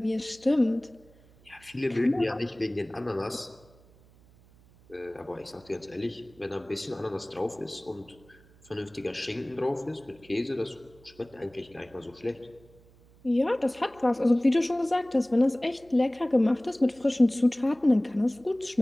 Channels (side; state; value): right; noise; hum, 27 dB below the sound